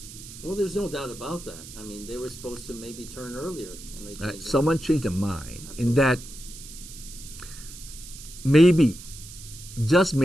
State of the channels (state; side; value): noise; right; hiss, 15 dB below the sound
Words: Well, there's no doubt about that. They were supposed to maybe turn earlier, and they changed. Someone changed their mind. Absolutely. In that maybe, just